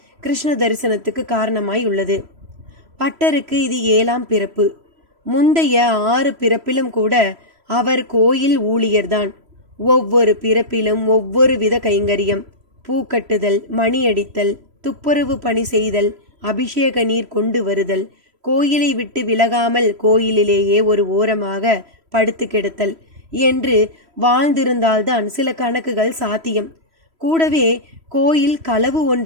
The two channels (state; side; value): late; left; 3.0 ms